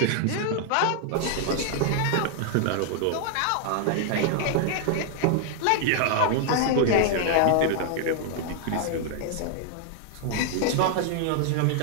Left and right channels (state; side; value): different; both; correlation 0.00